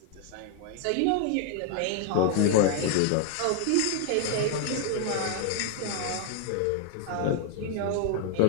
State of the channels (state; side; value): different; both; correlation 0.00